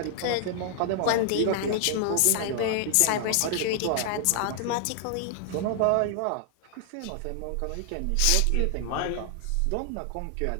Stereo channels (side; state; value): both; different; correlation -0.01